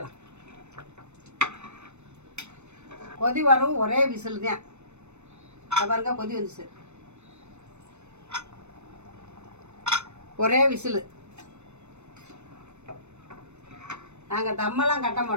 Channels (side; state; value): left; late; 0.82 ms